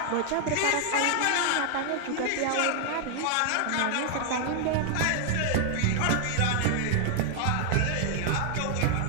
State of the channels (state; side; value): different; both; correlation 0.00